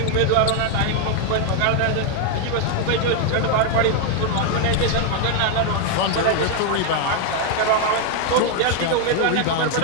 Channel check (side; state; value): both; different; correlation 0.00